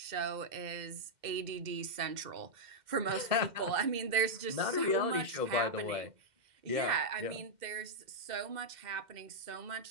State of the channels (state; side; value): late; left; 2.1 ms